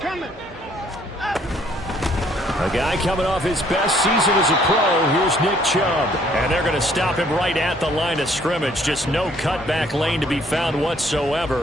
A guy coming off his best season as a pro. Here's Nick Chubb. And they're going to stop him right at the line of scrimmage. Just no cutback lane to be found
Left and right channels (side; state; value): both; normal; correlation 0.63